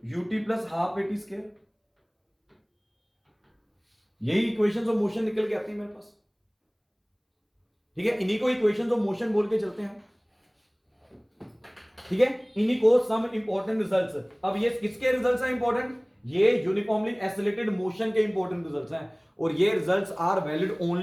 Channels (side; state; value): both; identical; correlation 1.00